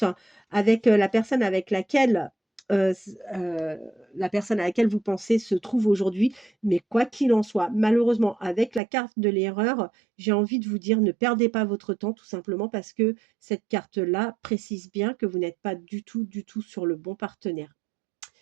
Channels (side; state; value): left; drops out; at 8.8 s